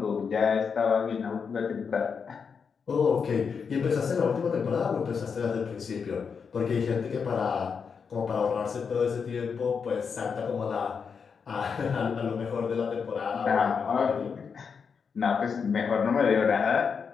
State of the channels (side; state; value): right; quieter; 6.0 dB